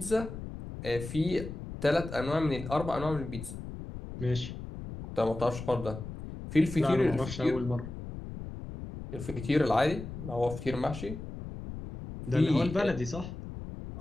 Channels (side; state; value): left; noise; rumble, 10 dB below the sound